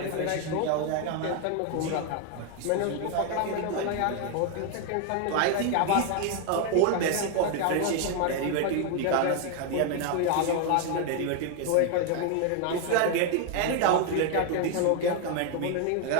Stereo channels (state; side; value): different; both; correlation 0.01